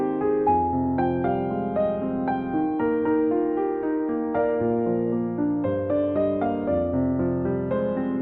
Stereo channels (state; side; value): identical; both; correlation 1.00